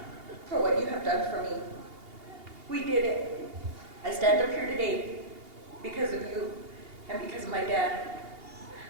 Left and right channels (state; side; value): late; left; 2.8 ms